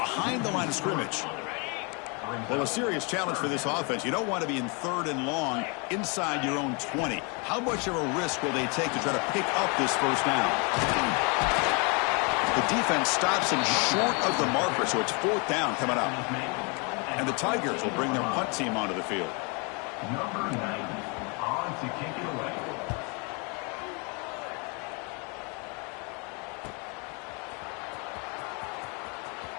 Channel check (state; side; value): quieter; right; 32.9 dB